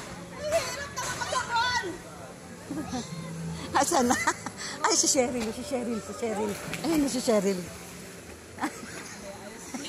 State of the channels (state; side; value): identical; both; correlation 1.00